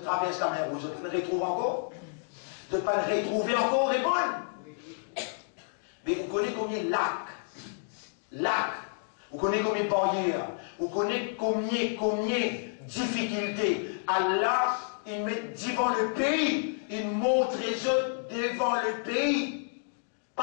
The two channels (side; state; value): right; silent; digital silence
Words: la mer rouge. Vous ne retrouvez encore? Vous ne pas le retrouver encore, répondre. Mais vous connaissez combien de lacs, vous connaissez combien de barrières, vous connaissez combien de difficultés. Allah, il met devant le pays, il montre les autres devant le pays.